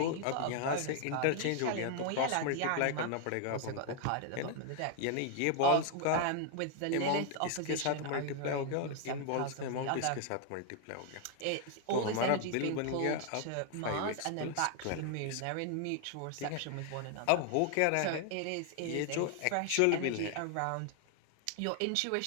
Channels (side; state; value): both; different; correlation 0.00